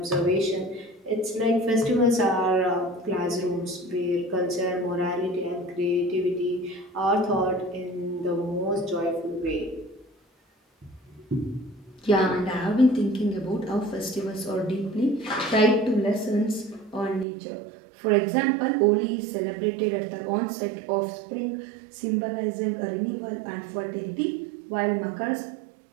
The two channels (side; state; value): left; drops out; at 17.2 s